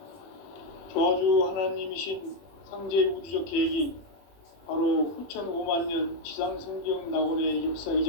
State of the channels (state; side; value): late; right; 21 ms